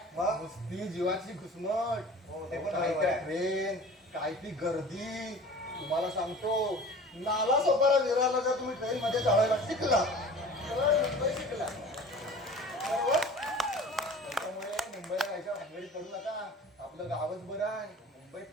मग? नुसती जीवाची घुसमट. हो, ते पण काय बरोबर त्या आहे. ट्रेन, काय ती गर्दी. तुम्हाला सांगतो, नाला सोपारा विरारला जर तुम्ही ट्रेन मध्ये चढायला शिकला तर मुंबई शिकला. बरोबर? त्याच्यामुळे मुंबईला जायच्या भानगडीत पडू नका. आपलं गावच बरं आहे. मुंबईत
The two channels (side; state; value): both; normal; correlation 0.42